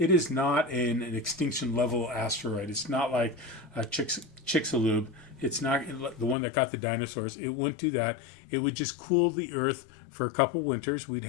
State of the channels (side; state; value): right; drops out; at 6.4 s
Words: is not an extinction level asteroid. It's not like Chicxulub. It's not the one that got the dinosaurs. It wouldn't do that. It would just cool the Earth for a couple winters. We'd